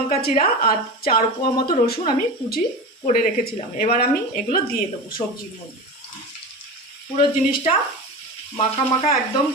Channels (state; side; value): normal; both; correlation 0.27